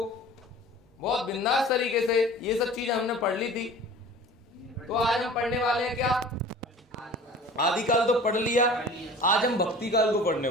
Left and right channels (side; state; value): both; normal; correlation 0.42